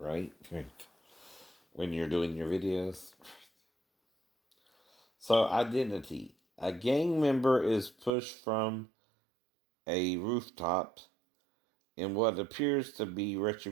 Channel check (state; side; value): drops out; left; at 8.1 s